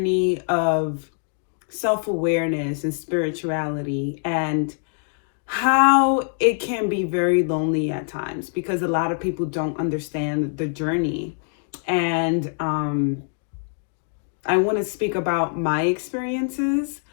of self-awareness and spirituality, and how it can be very lonely at times because a lot of people don't understand the journey. And I want to speak about my experiences.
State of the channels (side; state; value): right; silent; 63 dB below the other